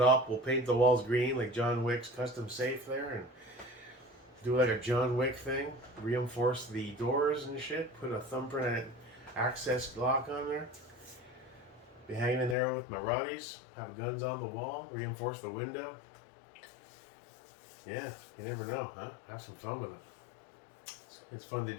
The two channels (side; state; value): right; drops out; at 12.6 s